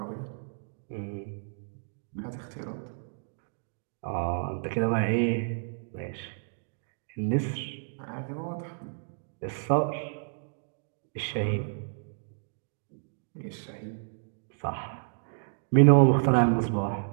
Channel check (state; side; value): silent; left; digital silence